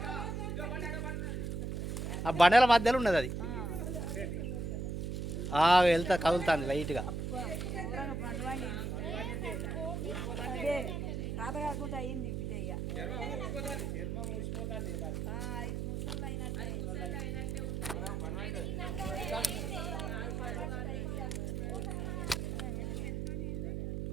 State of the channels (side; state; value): right; noise; hum, 2 dB below the sound